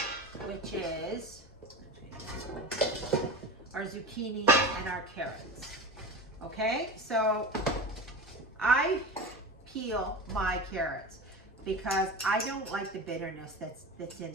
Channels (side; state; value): both; normal; correlation 0.29